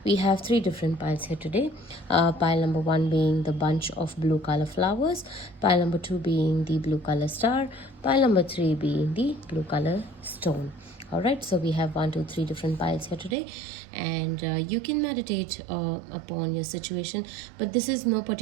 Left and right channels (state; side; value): drops out; left; at 13.4 s